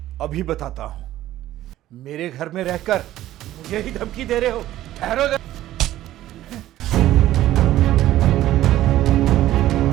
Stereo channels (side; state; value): left; quieter; 14.0 dB